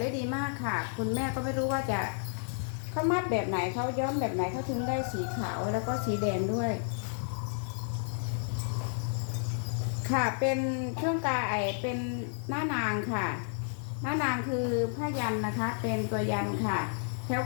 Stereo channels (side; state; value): right; silent; 57 dB below the other